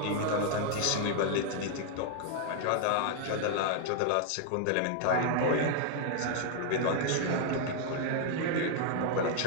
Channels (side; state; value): both; different; correlation 0.00